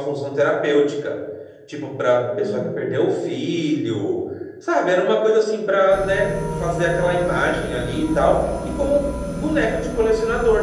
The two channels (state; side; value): identical; both; correlation 1.00